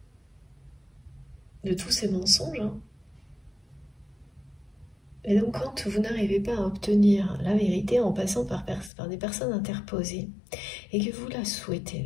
De tous ces mensonges. Hein. Et donc, quand vous n'arrivez pas à obtenir la vérité en passant par des personnes interposées, et que vous la souhaitez,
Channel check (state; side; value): drops out; right; at 8.9 s